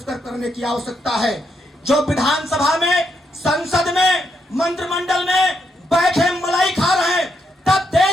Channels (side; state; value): both; normal; correlation 0.79